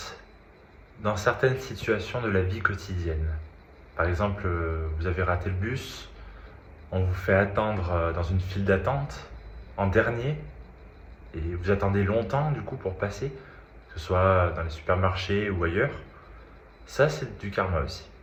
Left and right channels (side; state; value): both; identical; correlation 1.00